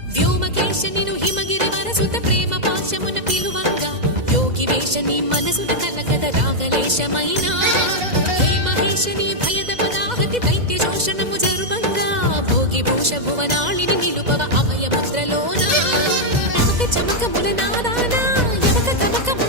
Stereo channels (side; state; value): left; late; 2.0 ms